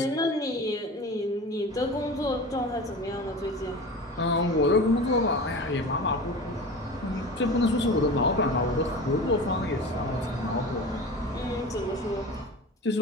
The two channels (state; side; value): normal; both; correlation 0.33